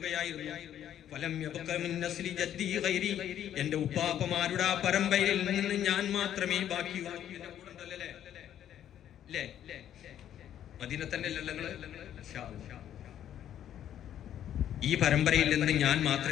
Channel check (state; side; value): quieter; right; 10.7 dB